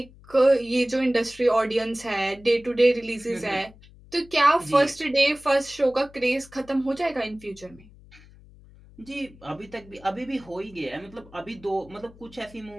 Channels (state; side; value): noise; left; hum, 23 dB below the sound